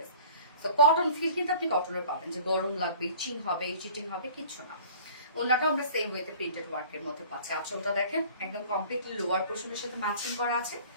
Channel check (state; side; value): inverted; both; correlation -0.47